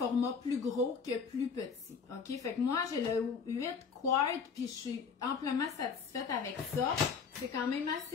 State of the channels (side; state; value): right; quieter; 5.9 dB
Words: plus gros que plus petit, OK? Fait que moi, j'ai le 8 quarts, puis je suis amplement satisfaite avec ça. C'est quand même